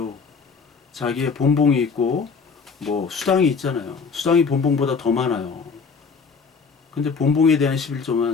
자기의 본봉이 있고 뭐 수당이 있잖아요. 수당이 본봉보다 더 많아요. 근데 본봉에 대한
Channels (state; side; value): quieter; right; 5.3 dB